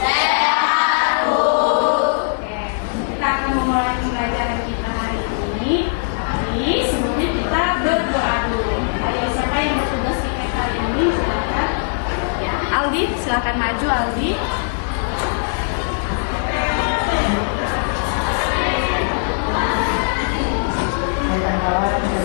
Bu. Oke, kita akan memulai pembelajaran kita hari ini. Tapi sebelumnya kita berdoa dulu. Hari siapa yang bertugas di PK hari ini? Silakan. Aldi, silakan maju Aldi. Kawan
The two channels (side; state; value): right; silent; digital silence